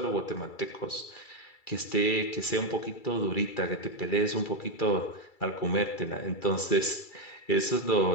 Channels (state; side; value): late; right; 2.3 ms